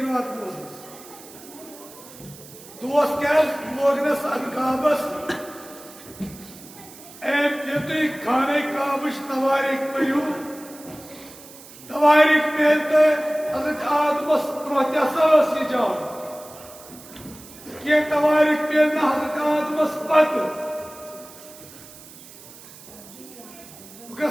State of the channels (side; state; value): right; noise; hiss, 19 dB below the sound